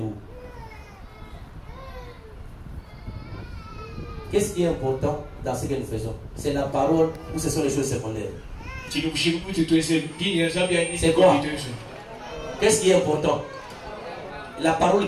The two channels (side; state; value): both; identical; correlation 1.00